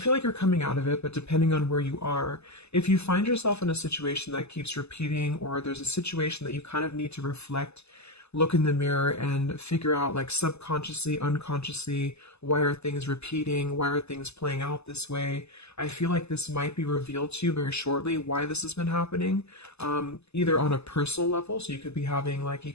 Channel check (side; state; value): right; late; 0.80 ms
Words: like you're coming out of it, but depending on where you are, if you find yourself in a situation that keeps repeating, or there's a situation that you kind of need to reflect, look in the mirror and figure out, like, subconsciously, unconsciously, why are things repeating? Why are things playing out this way? I feel like this might be revealed to you very shortly, why this has been happening, either on a personal level. So you could be having like